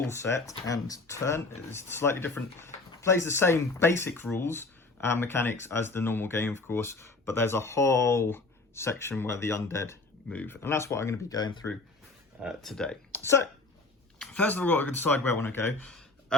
set and turn. It's slightly different. Plays the same basic rules and mechanics as the normal game, of course. But there's a whole section where the undead move. And that's what I'm going to be going through today. So, first of all, I've got to decide where I want to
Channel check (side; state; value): right; quieter; 3.4 dB